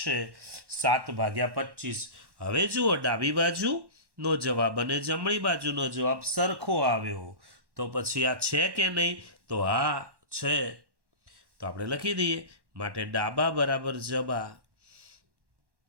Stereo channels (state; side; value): late; left; 1.1 ms